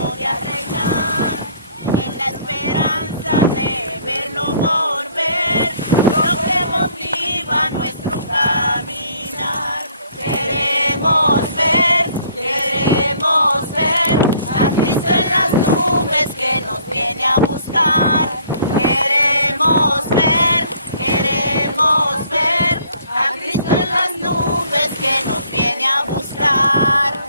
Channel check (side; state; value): both; inverted; correlation -0.59